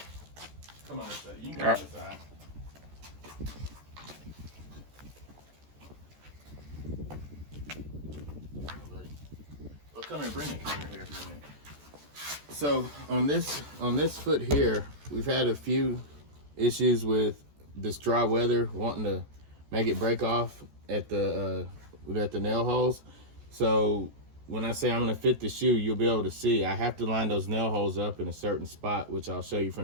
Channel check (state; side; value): late; left; 14 ms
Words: Come on this side. You can go on this side. Well, come here, bring the camera here for a minute. So on this foot here, we've had a few issues with this dry weather wanting to make it break off at the nail holes. So when I say I'm gonna fit the shoe, you'll be able to see I have to line those nail holes up in a certain spot, which I'll show you